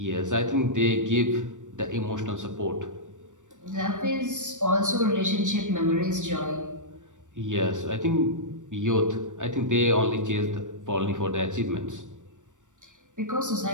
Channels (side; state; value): left; late; 0.86 ms